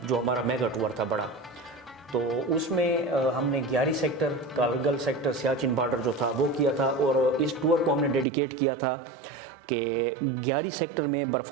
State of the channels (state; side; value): drops out; left; at 8.2 s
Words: جو ہمارا میگا ٹور تھا بڑا، تو اس میں ہم نے Gyari sector, Kargil sector, Siachen border جو تھا وہ کیا تھا. اور اس ٹور کو ہم نے ڈیڈیکیٹ کیا تھا کہ گیاری سیکٹر میں